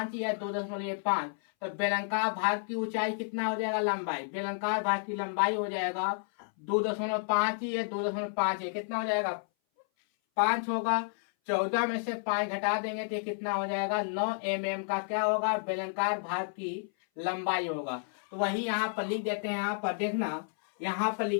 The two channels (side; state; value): right; silent; 57 dB below the other